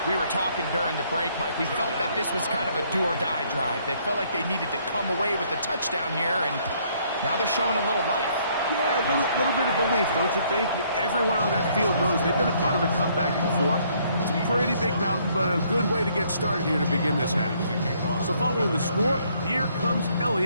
We were talking during the break, Mike. We felt that this was kind of a do-or-die drive. They felt like they needed to come away with the touchdown here, and now they're showing a little life. Yeah, a little bit of belief, don't you think? Everyone on that field knows they've been a part of a comeback before. It's a pretty big mountain, but a good way to get started here to begin this half. So following the score, here comes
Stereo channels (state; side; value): inverted; both; correlation -0.66